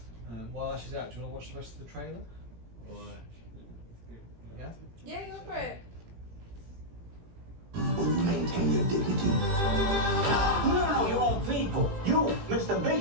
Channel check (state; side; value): late; left; 18 ms